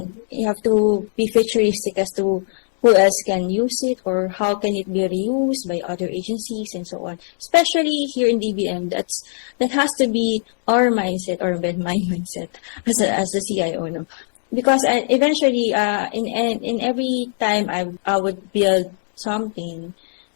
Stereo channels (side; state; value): right; silent; digital silence